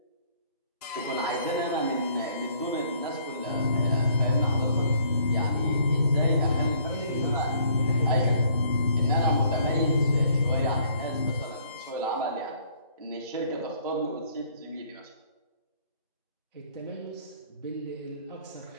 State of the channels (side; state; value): both; inverted; correlation -0.61